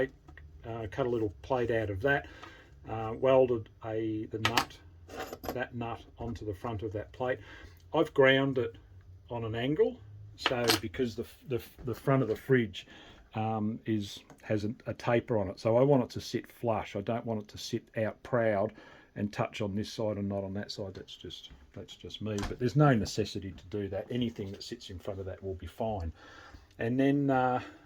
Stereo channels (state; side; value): identical; both; correlation 1.00